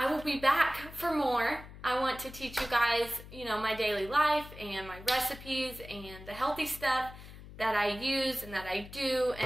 will be back for more. I want to teach you guys, my daily life and my recipes and the healthy stuff that I use and that I do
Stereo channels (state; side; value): noise; left; hum, 16 dB below the sound